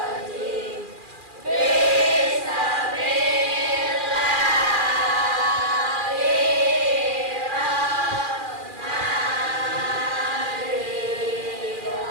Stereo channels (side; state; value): left; late; 2.4 ms